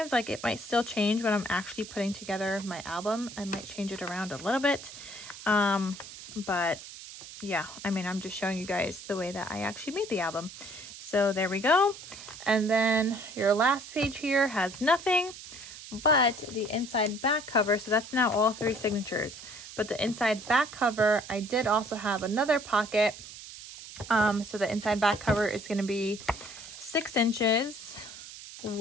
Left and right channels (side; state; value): right; noise; hiss, 14 dB below the sound